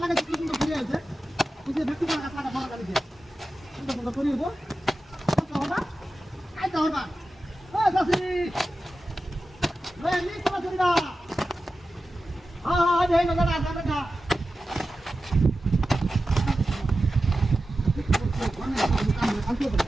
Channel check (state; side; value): normal; both; correlation 0.93